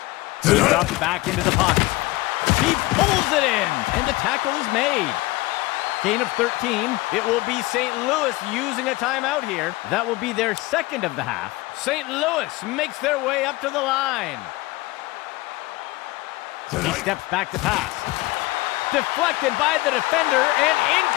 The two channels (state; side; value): quieter; right; 20.6 dB